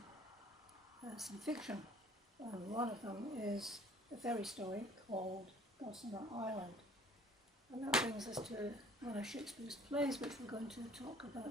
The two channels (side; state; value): both; normal; correlation 0.54